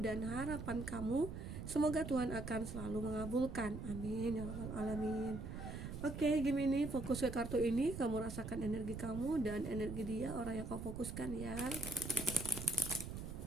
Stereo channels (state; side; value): noise; right; rumble, 7 dB below the sound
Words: dan harapan kamu. Semoga Tuhan akan selalu mengabulkan. Amin ya rabbal alamin. Oke, Gemini, fokus ke kartu ini. Kamu rasakan energi kamu dan energi dia, orang yang kau fokuskan ya.